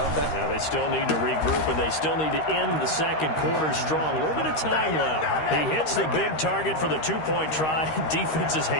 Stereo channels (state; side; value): late; right; 13 ms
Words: they? Yeah, they still need to regroup, and they still need to end the second quarter strong. A little bit of time left. He hits the big target for the 2-point try. Defenses